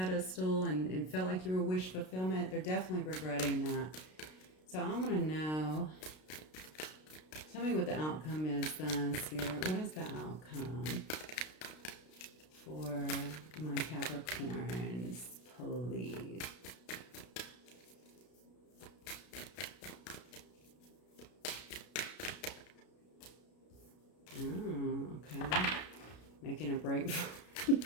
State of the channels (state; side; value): late; right; 32 ms